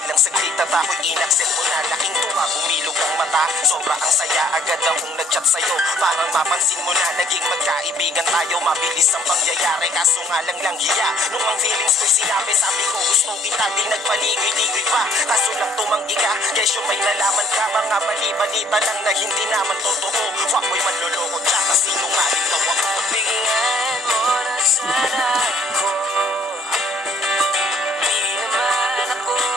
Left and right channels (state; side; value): normal; both; correlation 0.61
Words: saglit at ako'y inaccept mo na. Laking tuwa, bumilog ang mata, sobra ang saya. Agad akong nag-chat sa'yo, parang mapansin mo na naging magkaibigan tayo. Mabilis ang pangyayari, kaso nga lang hiya. Nung ang feelings ko'y sinabi, sabi ko gusto kita, di nagpaligoy-ligoy pa. Kaso lang tumanggi ka, kesyo may nalaman ka. Mga bali-balita lang na hindi naman totoo. Fuckboy, manloloko, tsaka sinungaling daw ako. Bigyan mo na sana ako. Di naman ako